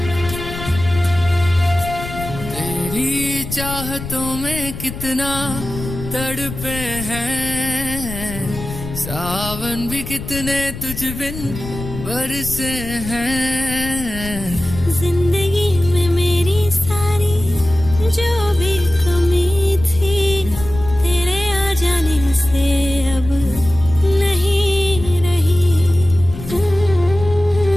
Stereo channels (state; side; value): noise; left; rumble, 10 dB below the sound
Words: चाहतों में कितना तड़पे हैं, सावन भी कितने तुझ बिन बरसे हैं। जिंदगी में मेरी सारी जो भी कमी थी, तेरे आ जाने से अब नहीं रही।